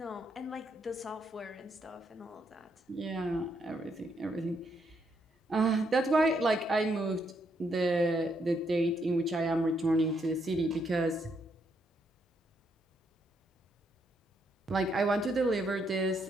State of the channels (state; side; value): normal; both; correlation 0.76